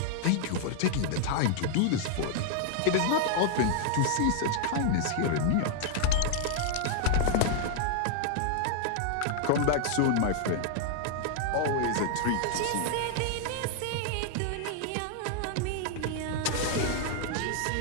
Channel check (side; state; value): both; different; correlation 0.00